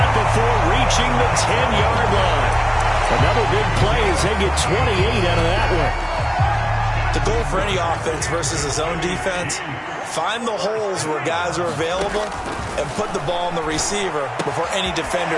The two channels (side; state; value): both; identical; correlation 1.00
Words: before reaching the 10-yard line. Another big play as they get 28 out of that one. The goal for any offense versus a zone defense, find the holes where guys are available and put the ball on the receiver before any defender